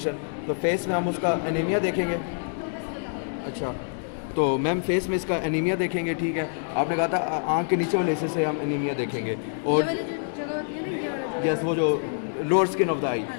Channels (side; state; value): right; silent; digital silence